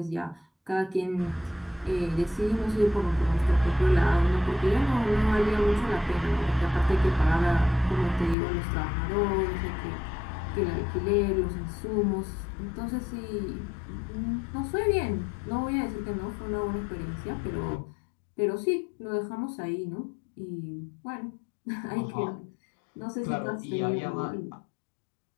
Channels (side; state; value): right; drops out; at 8.3 s